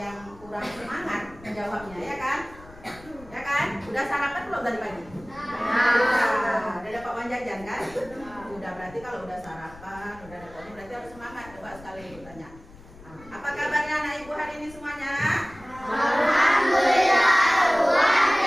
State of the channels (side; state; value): left; noise; rumble, 20 dB below the sound